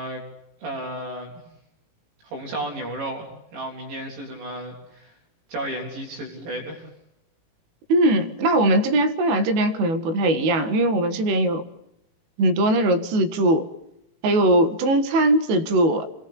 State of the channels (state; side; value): late; left; 19 ms